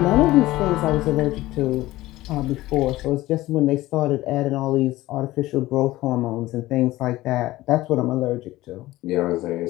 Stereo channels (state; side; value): quieter; right; 17.2 dB